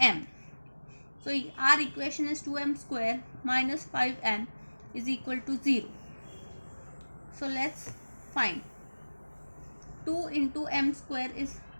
So our equation is 2m square minus 5m is equal to 0. So let's find 2 into m square is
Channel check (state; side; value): inverted; both; correlation -1.00